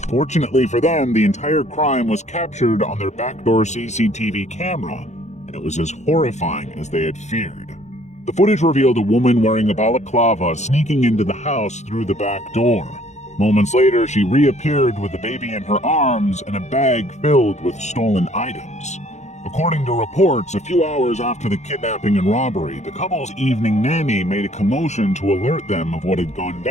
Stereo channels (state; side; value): late; right; 0.33 ms